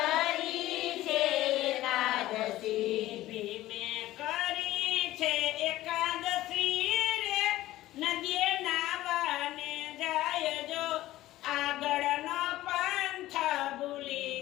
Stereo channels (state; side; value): quieter; right; 15.7 dB